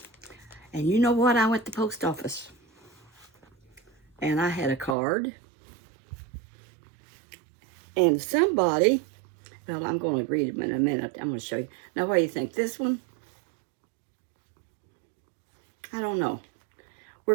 And you know what? I went to the post office. And I had a card. And somebody, well, I'm going to read it in a minute. I'm going to show you. Now, what do you think? This one? I don't know. We're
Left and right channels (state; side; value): drops out; left; at 5.0 s